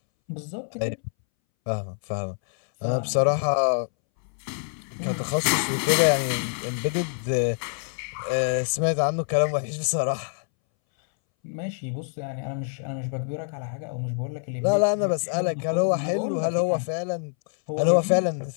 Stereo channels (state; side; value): silent; right; 61 dB below the other